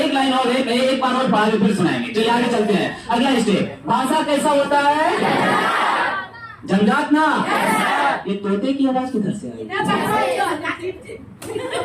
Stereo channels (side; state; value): both; identical; correlation 1.00